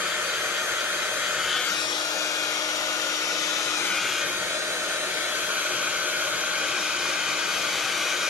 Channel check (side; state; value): right; quieter; 4.1 dB